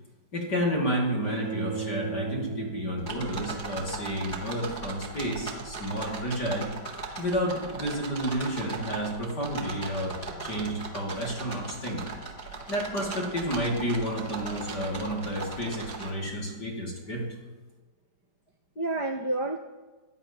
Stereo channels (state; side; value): late; right; 4.8 ms